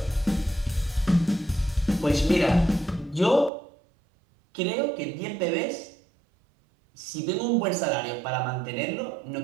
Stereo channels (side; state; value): left; drops out; at 3.5 s